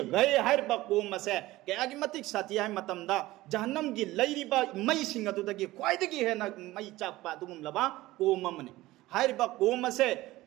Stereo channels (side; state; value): left; quieter; 17.8 dB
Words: gai hariba ko mase ke agi matik sati hai matamda jahannam gi lairiba mai singa du dagi kwaidagi hena mai chakpa dugum laba ko mamne hariba ko mase